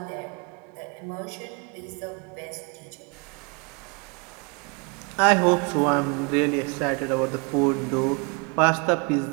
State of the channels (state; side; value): quieter; left; 32.4 dB